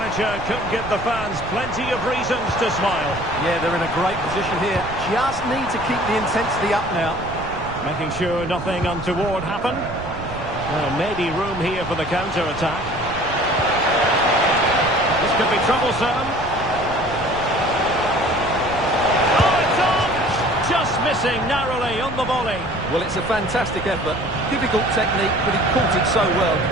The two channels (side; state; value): right; noise; rumble, 12 dB below the sound